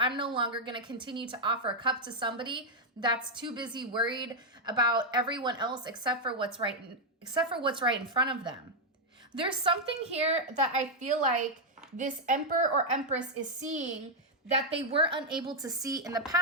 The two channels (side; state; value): both; normal; correlation -0.01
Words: no longer going to continue to offer a cup to somebody that's too busy worried about everyone else except for what's right in front of them. There's something here that I feel like this Emperor or Empress is seeing that they were unable to see in the